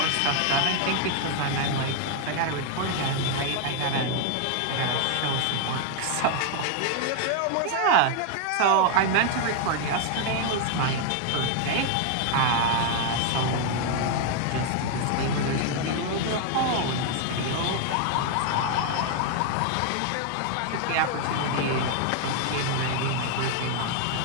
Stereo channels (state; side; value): different; both; correlation 0.00